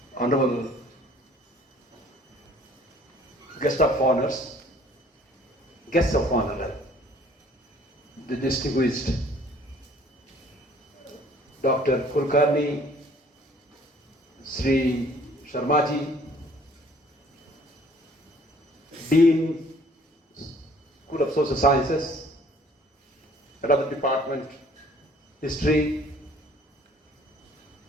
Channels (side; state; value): both; normal; correlation 0.56